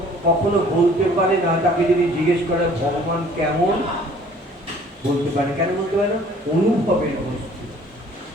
কখনো বলতে পারে না। তাকে যদি জিজ্ঞেস করে ভগবান কেমন, বলতে পারে। কেন বলতে পারে না? অনুভবের বস্তু।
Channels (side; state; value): both; normal; correlation 0.54